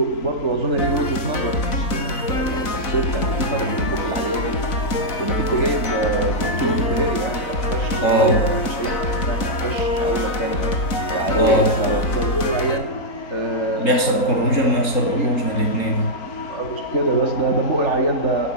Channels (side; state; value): right; late; 4.0 ms